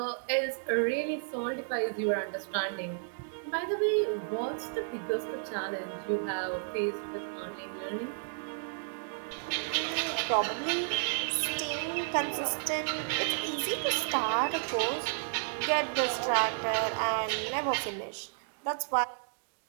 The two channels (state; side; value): silent; left; digital silence